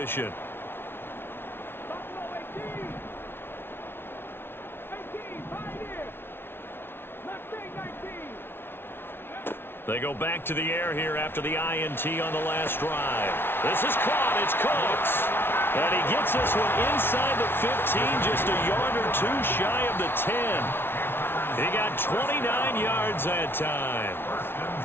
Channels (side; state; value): right; late; 0.11 ms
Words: They go back to the air here after the INT on the last drive. This is caught. It's Cooks. And he gets this one inside the 15, just a yard or 2 shy of the 10. He got 29 yards that time.